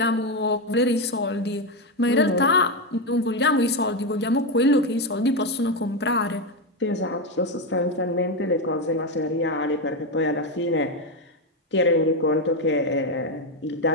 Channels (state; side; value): normal; both; correlation 0.09